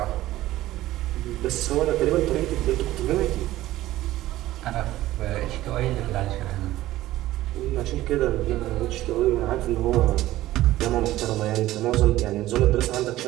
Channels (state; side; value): quieter; left; 15.5 dB